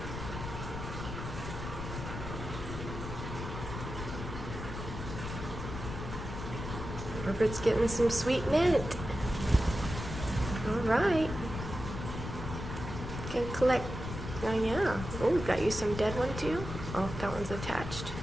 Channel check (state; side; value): noise; left; rumble, 7 dB below the sound